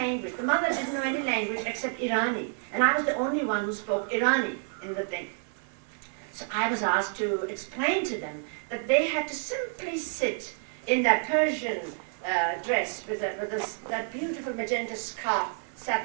The mother didn't know any language except Irani. And I was the only one who spoke Irani in the thing. So I was asked to explain to them that they had to simply sit in that Persian dress with that beautiful magenta scarf,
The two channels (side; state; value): left; silent; 57 dB below the other